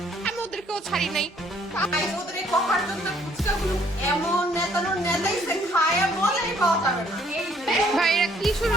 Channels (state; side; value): normal; both; correlation 0.63